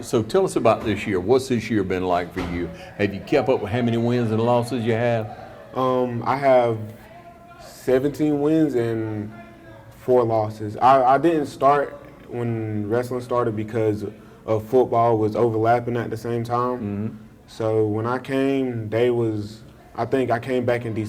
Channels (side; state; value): both; identical; correlation 1.00